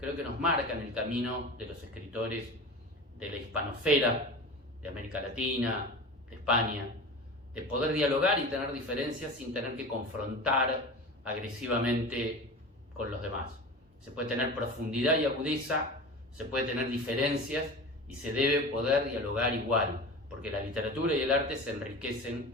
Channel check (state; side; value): normal; both; correlation 0.32